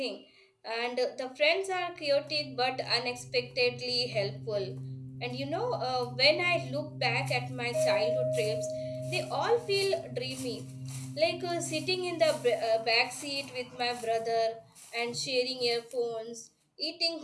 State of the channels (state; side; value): identical; both; correlation 1.00